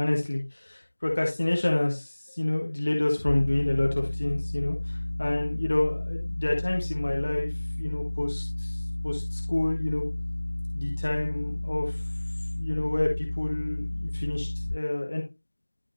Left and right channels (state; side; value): inverted; both; correlation -1.00